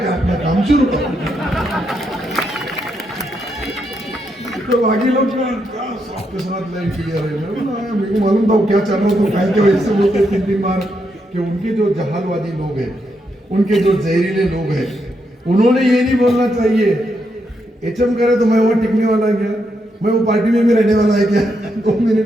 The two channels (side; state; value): both; normal; correlation 0.80